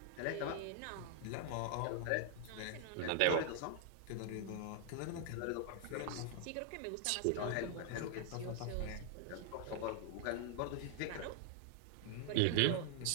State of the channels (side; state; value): both; different; correlation 0.00